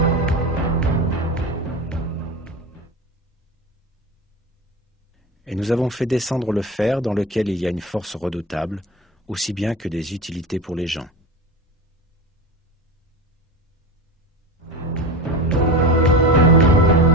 Et nous avons fait descendre le fer dans lequel il y a une force redoutable, aussi bien que des utilités pour les gens.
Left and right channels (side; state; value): both; normal; correlation 0.26